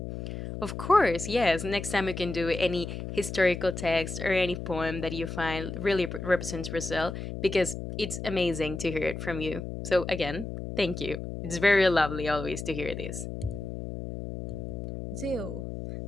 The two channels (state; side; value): noise; left; hum, 7 dB below the sound